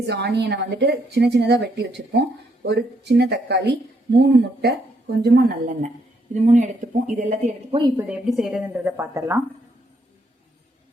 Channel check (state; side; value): normal; both; correlation 0.74